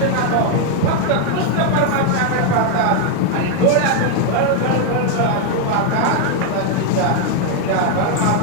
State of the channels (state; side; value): different; both; correlation 0.00